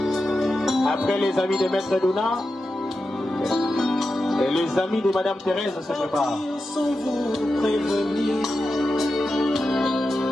Après les amis de Maître Dona, et les amis de Madame Thérèse se préparent. sans vous prévenir,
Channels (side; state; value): both; normal; correlation 0.90